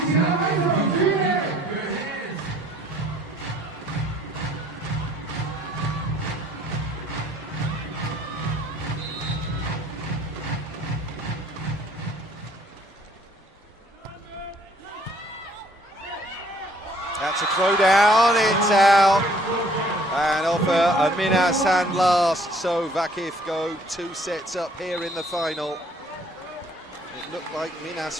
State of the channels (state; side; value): normal; both; correlation 0.60